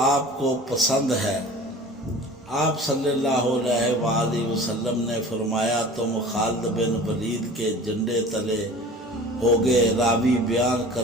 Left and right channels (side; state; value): both; normal; correlation 0.41